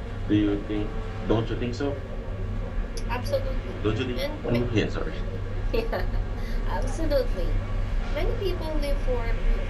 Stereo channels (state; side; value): identical; both; correlation 1.00